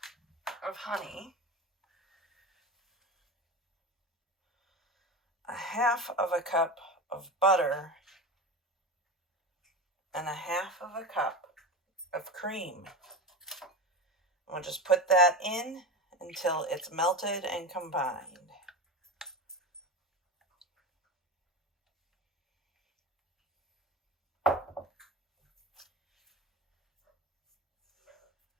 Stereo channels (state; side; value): normal; both; correlation 0.24